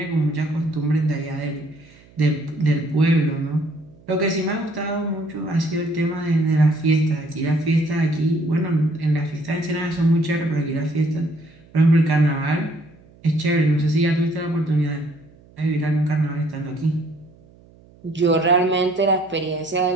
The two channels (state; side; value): noise; right; hum, 26 dB below the sound